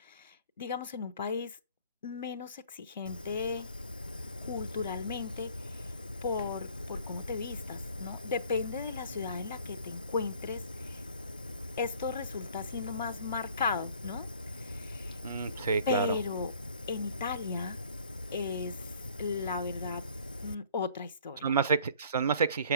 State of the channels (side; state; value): both; inverted; correlation -0.53